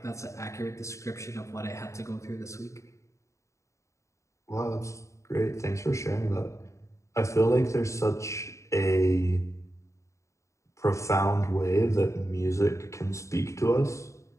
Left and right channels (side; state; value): right; late; 0.14 ms